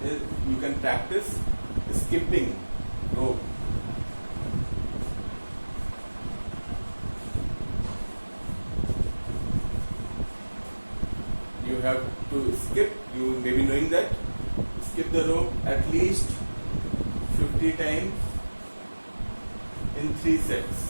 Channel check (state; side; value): inverted; both; correlation -1.00